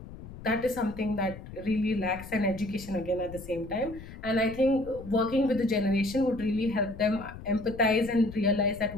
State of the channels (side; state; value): left; noise; rumble, 14 dB below the sound